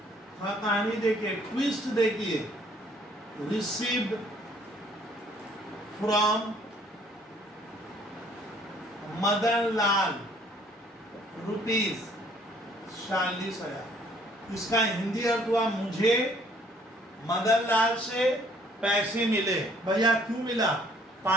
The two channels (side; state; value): both; normal; correlation 0.61